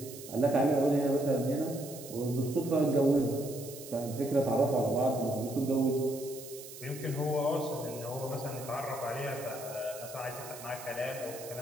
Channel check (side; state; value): right; noise; hiss, 14 dB below the sound